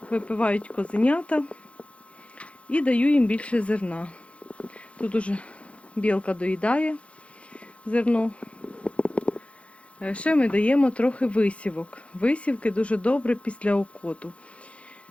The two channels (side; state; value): right; late; 0.062 ms